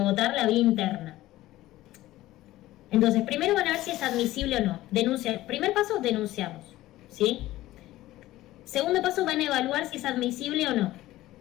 la vía interna. Entonces, primero van a ver si es admisible o no. Denunciar. Primer paso, denunciamos, ¿sí? Segundo paso, van a evaluar si es admisible o no,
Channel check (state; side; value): quieter; right; 16.1 dB